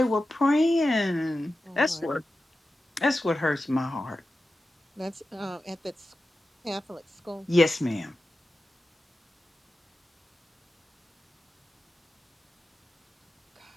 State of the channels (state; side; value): normal; both; correlation 0.93